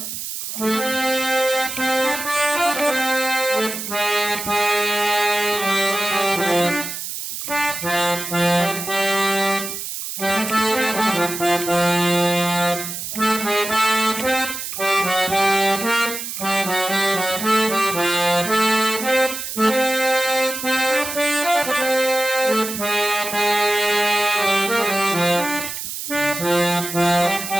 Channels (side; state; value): right; noise; hiss, 6 dB below the sound